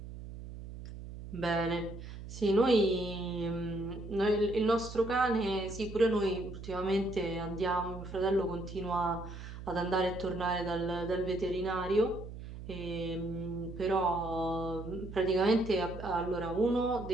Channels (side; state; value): right; noise; hum, 11 dB below the sound